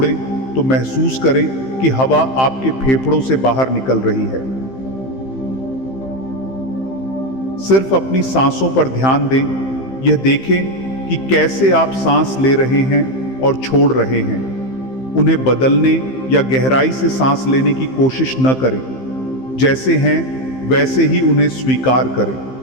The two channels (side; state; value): right; late; 15 ms